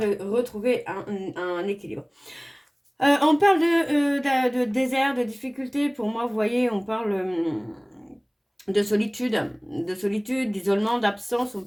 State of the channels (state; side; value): identical; both; correlation 1.00